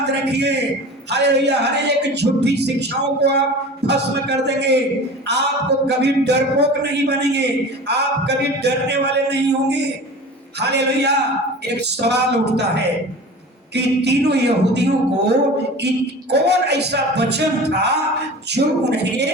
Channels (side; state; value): both; normal; correlation 0.37